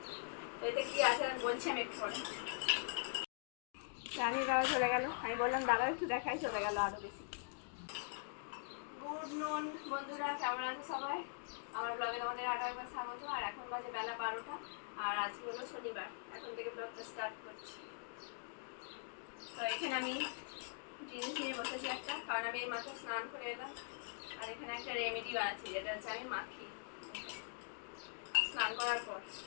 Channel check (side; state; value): right; silent; digital silence